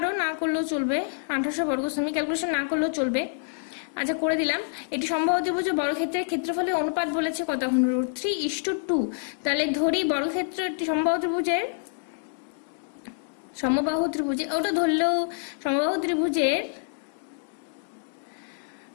না করলেও চলবে, 1800 বর্গ সেমি, ক্যালকুলেশন না করলেও চলবে। আচ্ছা করে দিলাম। এটি সমবাহু ত্রিভুজের বর্গক্ষেত্রের ক্ষেত্রফলের অনুপাত বলেছে কত, এখন √3:2। তাহলে ধরি বর্গক্ষেত্রটি সমবাহু ত্রিভুজে ওটা ধরলেও সমবাহু ত্রিভুজের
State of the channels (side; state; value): right; silent; digital silence